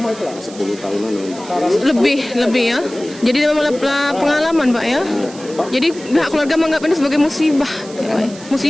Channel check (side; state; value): right; noise; hiss, 18 dB below the sound